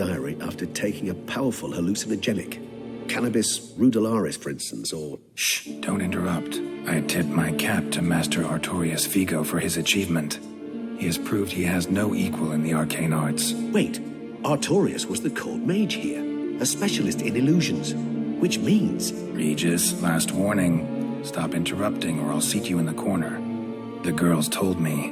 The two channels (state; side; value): identical; both; correlation 1.00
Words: after taking a powerful hallucinogenic. Cannabis rudularis, for instance, or... Shh, don't interrupt. I tip my cap to Master Artorius Vigo for his achievement. He has proved he has no equal in the arcane arts. Wait, Artorius was the court mage here, a specialist in illusions, which means... Regis, last warning. Stop interrupting or I'll seat you in the corner. The girls told me